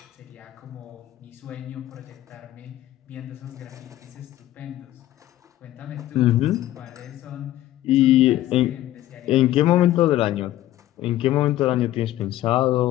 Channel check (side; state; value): right; quieter; 14.2 dB